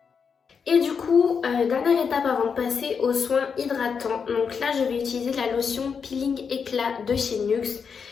Et du coup, dernière étape avant de passer aux soins hydratants. Donc là, je vais utiliser la lotion Peeling Éclat de chez NYX.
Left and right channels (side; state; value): right; quieter; 6.2 dB